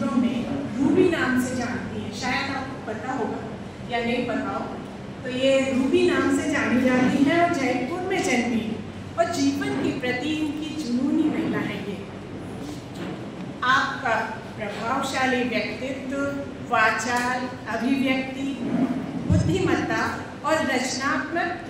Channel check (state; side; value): identical; both; correlation 1.00